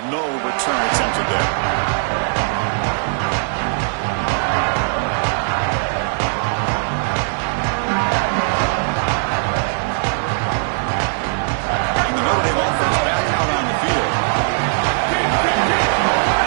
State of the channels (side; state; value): left; silent; digital silence